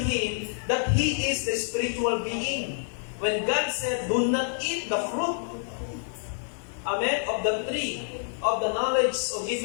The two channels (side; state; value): right; silent; digital silence